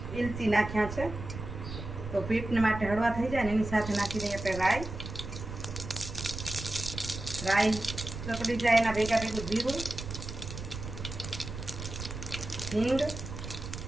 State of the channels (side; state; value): right; noise; rumble, 8 dB below the sound